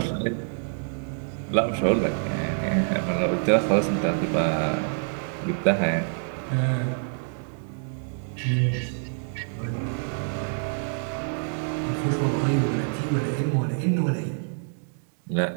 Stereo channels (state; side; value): silent; left; 61 dB below the other